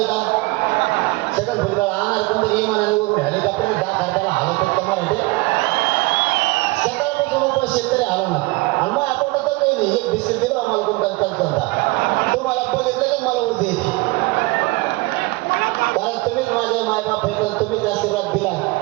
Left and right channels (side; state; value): left; quieter; 22.9 dB